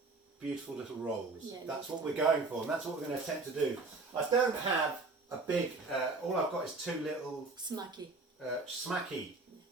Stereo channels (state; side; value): quieter; left; 3.6 dB